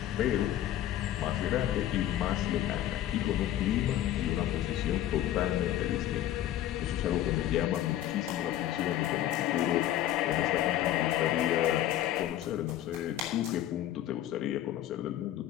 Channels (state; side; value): quieter; right; 12.5 dB